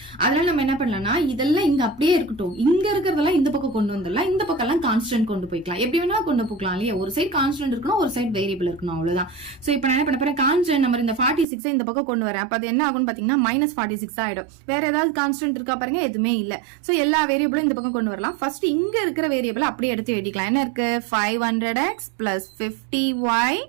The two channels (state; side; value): drops out; left; at 11.5 s